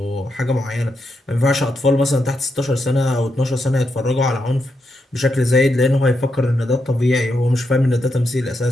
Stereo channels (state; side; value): normal; both; correlation 0.83